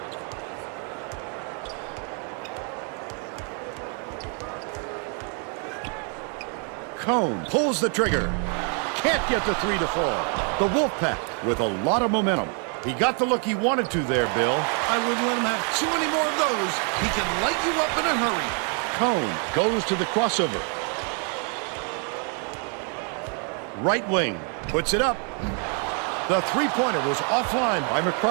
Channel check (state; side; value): quieter; left; 40.0 dB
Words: Cone pulls the trigger. Can't get the three to fall. The Wolfpack with a lot of momentum. He got the look he wanted to there, Bill. I wouldn't let him have too many more of those. He can light you up in a hurry. Cone goes to the crossover. Right wing, puts it up. The three-pointer was offline by